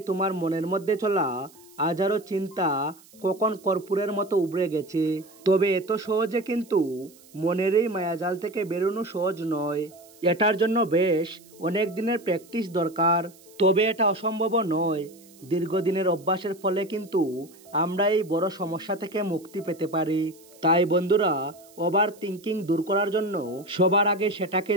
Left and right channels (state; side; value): noise; right; hiss, 25 dB below the sound